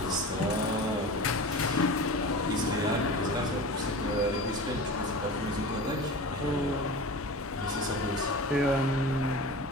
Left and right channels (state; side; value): normal; both; correlation 0.33